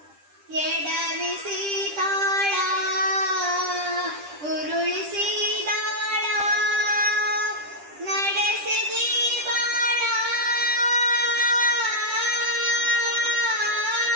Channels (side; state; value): left; late; 10 ms